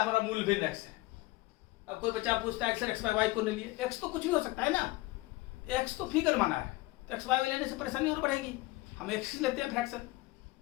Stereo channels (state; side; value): quieter; right; 20.4 dB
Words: हमारा मूल भिन्न x है। अब कोई बच्चा पूछता है x बाय वाई को नहीं लिए, x तो कुछ भी हो सकता है ना, x तो फिगर माना है, तो x बाय वाई लेने से परेशानी और बढ़ेगी। हम x लेते हैं फ्रैक्शन।